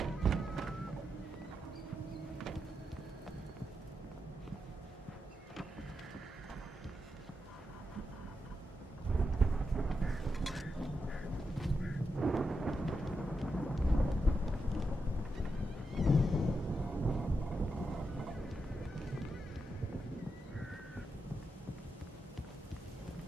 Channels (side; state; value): both; normal; correlation 0.86